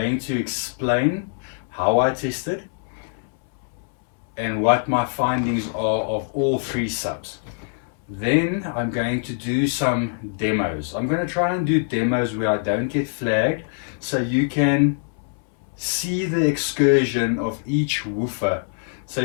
to explain how I tested and what my findings are of all three subs. Then I'm going to do some demos. I'm going to try and do demos where I don't get flagged, so you can see the excursion of each woofer, so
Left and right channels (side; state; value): right; silent; 63 dB below the other